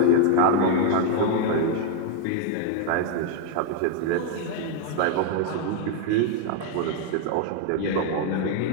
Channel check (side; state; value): both; different; correlation 0.01